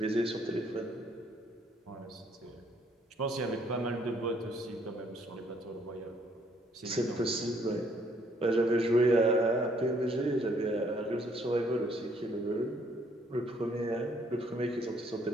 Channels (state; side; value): normal; both; correlation 0.66